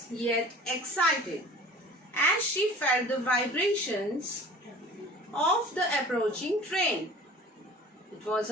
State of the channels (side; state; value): both; normal; correlation 0.44